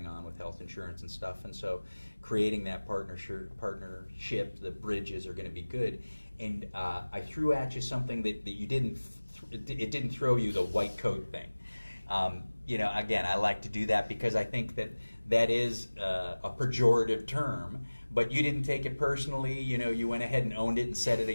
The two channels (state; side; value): inverted; both; correlation -1.00